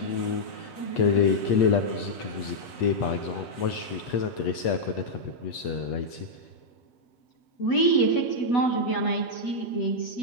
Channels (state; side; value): late; right; 8.4 ms